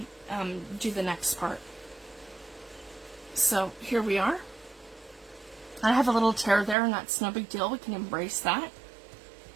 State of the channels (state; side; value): drops out; left; at 6.8 s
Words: do the next part. So here we are. I have a little tear there, and that's no big deal. We can embrace that.